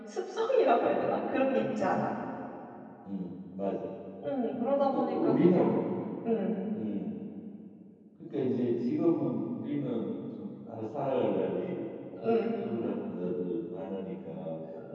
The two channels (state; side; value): identical; both; correlation 1.00